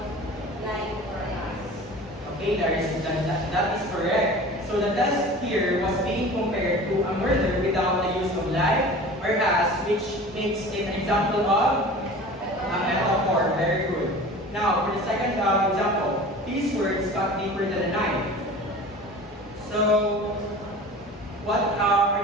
Hey, that is correct. So the test here was being compared to a murder without the use of life, whereas which makes it an example of a metaphor. Very good. Now, for the second example, these words cut deeper than a knife. So, what are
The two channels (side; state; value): both; normal; correlation 0.39